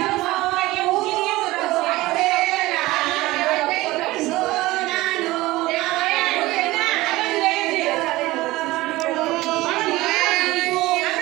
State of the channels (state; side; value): quieter; left; 18.9 dB